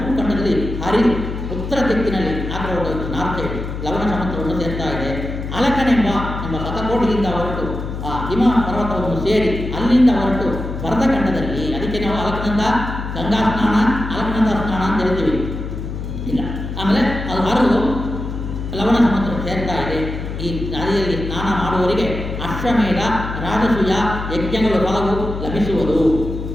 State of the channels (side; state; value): left; noise; hum, 6 dB below the sound